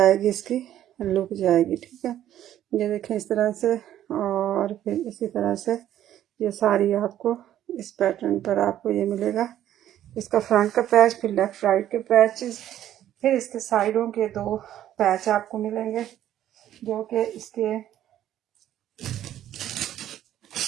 इसकी लुक जाएगी। ठीक है, ये देखें इस तरह से, और फिर इसी तरह से ये सारी आपको इस पैटर्न पर आपको ये मिलेगा। इसका फ्रंट का पैच, फिर लेफ्ट राइट के पैचेस, फिर इसके साइडों के 2 पैच आपको मिलेंगे, जो कि इसके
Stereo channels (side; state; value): left; quieter; 11.8 dB